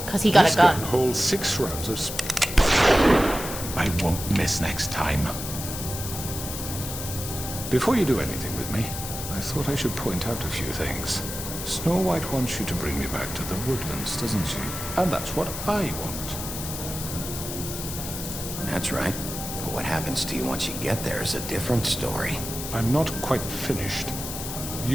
he got This a gun. holds 6 rounds of I won't miss next time. Before you do anything with me, I thought I should point out a few things. Snow White wants you to bring me back to the woodlands, doesn't she? And that's what I want. That's right. But what happens to you once you get there is a different story. I'm not quite finished.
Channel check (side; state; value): left; noise; hiss, 7 dB below the sound